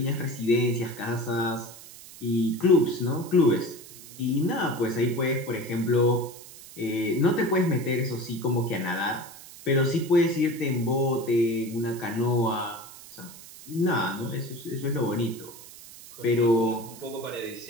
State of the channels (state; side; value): noise; right; hiss, 17 dB below the sound